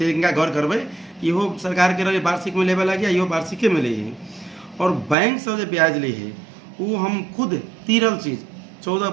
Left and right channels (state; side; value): drops out; left; at 5.2 s